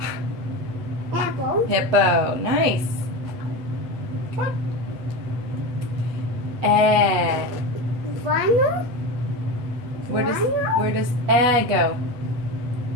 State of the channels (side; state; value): left; late; 8.1 ms